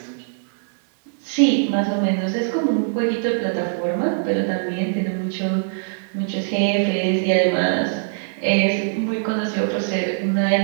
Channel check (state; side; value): silent; left; 64 dB below the other